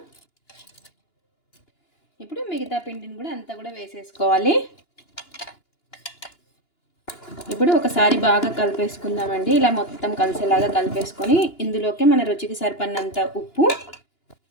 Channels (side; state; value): right; late; 2.9 ms